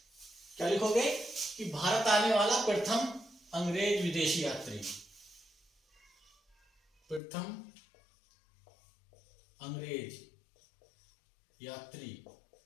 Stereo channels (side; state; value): right; drops out; at 7.2 s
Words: क्या लिखोगे? कि भारत आने वाला प्रथम अंग्रेज विदेशी यात्री, प्रथम अंग्रेज यात्री